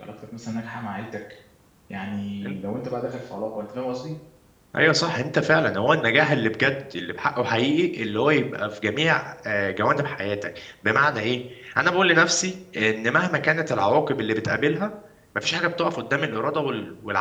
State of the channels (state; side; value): identical; both; correlation 1.00